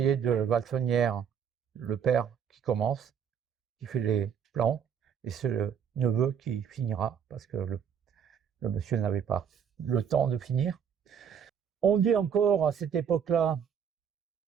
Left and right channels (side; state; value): left; quieter; 7.8 dB